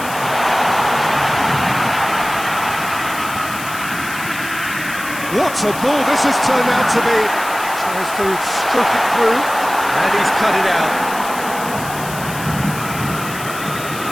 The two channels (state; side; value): noise; left; hiss, 12 dB below the sound